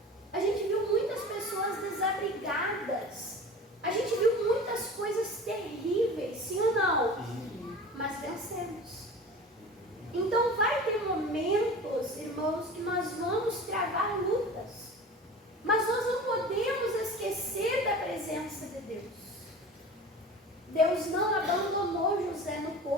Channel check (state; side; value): normal; both; correlation 0.37